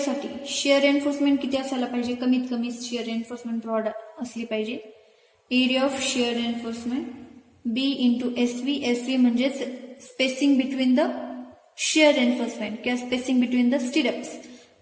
शिअर रेन्फोर्समेंट किती असायला पाहिजे? कमीत कमी शिअर रेन्फोर्समेंट प्रोव्हाइड असली पाहिजे. Area of shear reinforcement B into SV. SV म्हणजे spacing between the shear reinforcement किंवा spacing between the stirrups.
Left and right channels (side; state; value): both; identical; correlation 1.00